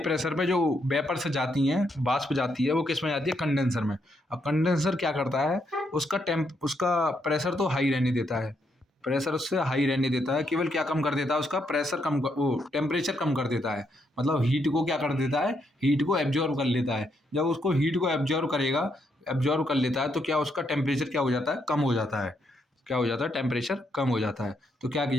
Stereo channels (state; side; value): normal; both; correlation 0.77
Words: पे जो वेपर से जाती हैं, वाष्प जाती है, वो किस में जाती है, कंडेंसर में। अब कंडेंसर क्या करता है, उसका प्रेशर तो हाई रहने देता है, प्रेशर उससे हाई रहने देता है, केवल क्या कम कर देता है, उसका प्रेशर वो टेम्परेचर कम कर देता है। मतलब हीट को क्या कर देता है, हीट को एब्जॉर्व कर लेता है। जब उसको हीट को एब्जॉर्व कर लेता है तो क्या उसका टेम्परेचर क्या हो जाता है, कम हो जाता है। क्या हो जाता है, टेम्परेचर कम हो जाता है। तो क्या